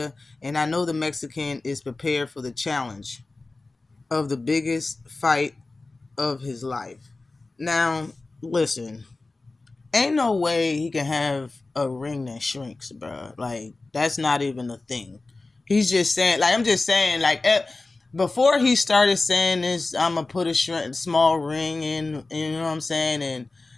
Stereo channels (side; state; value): right; quieter; 3.4 dB